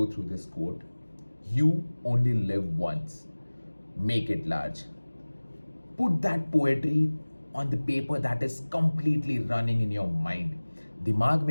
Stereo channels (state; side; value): inverted; both; correlation -1.00